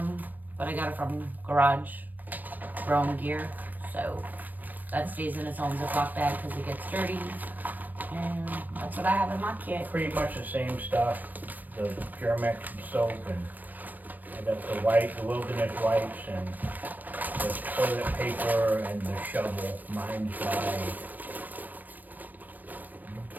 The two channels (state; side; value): late; left; 0.086 ms